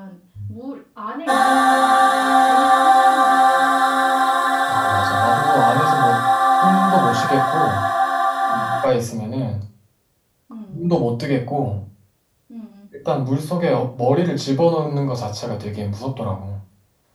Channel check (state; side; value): identical; both; correlation 1.00